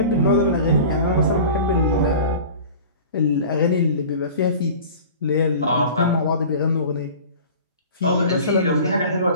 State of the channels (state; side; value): inverted; both; correlation -0.39